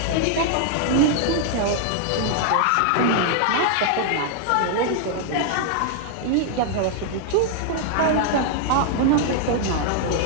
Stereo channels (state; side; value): different; both; correlation 0.00